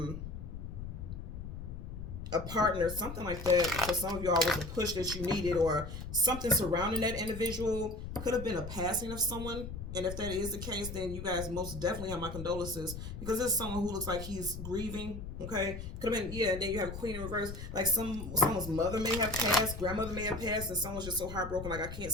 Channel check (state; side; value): noise; left; rumble, 8 dB below the sound